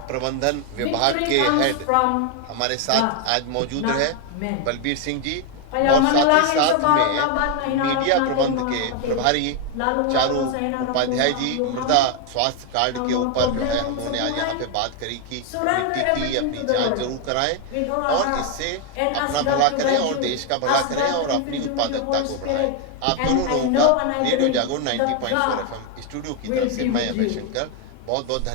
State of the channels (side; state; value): both; different; correlation 0.01